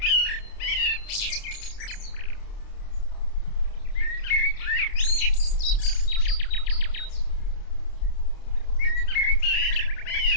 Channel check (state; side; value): late; right; 29 ms